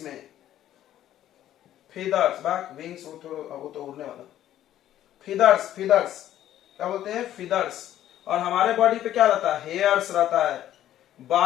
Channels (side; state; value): right; quieter; 12.2 dB